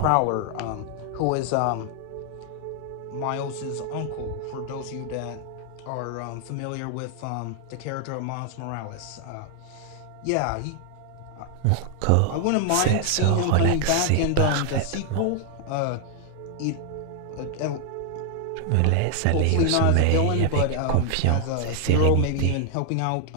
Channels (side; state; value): both; different; correlation 0.00